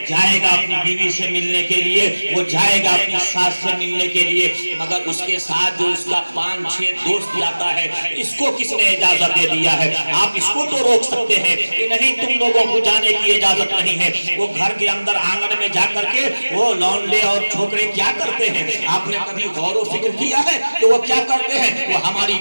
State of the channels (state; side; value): inverted; both; correlation -1.00